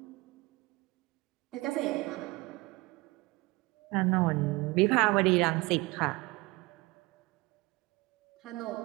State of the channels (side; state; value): left; quieter; 23.0 dB